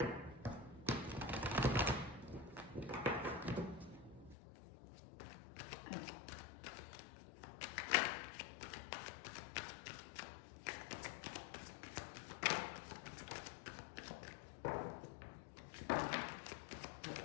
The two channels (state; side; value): drops out; right; at 4.4 s